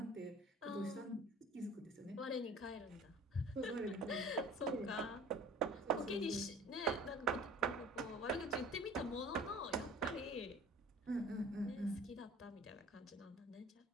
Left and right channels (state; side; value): normal; both; correlation 0.46